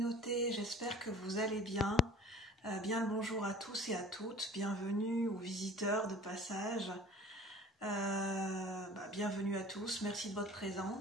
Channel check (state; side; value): normal; both; correlation 0.46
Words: j'espère que vous allez bien. Bien le bonjour à tous et à toutes, bienvenue aux visiteurs de passage. Bienvenue à tous, merci de votre